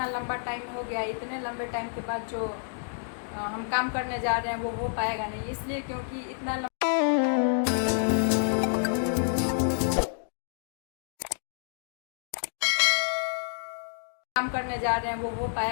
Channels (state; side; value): silent; right; digital silence